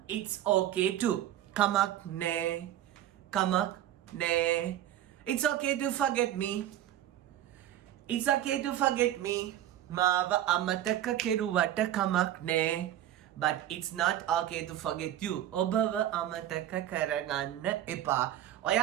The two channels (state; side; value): quieter; left; 12.2 dB